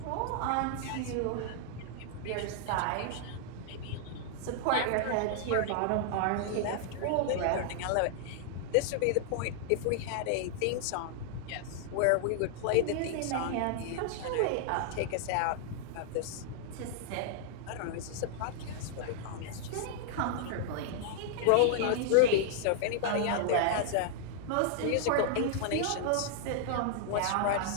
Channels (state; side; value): different; both; correlation -0.01